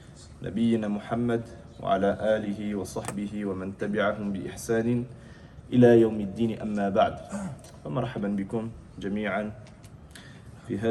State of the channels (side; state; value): both; identical; correlation 1.00